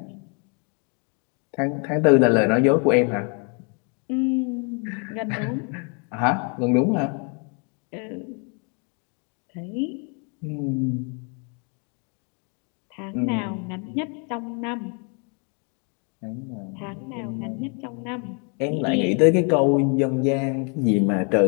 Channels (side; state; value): right; quieter; 37.0 dB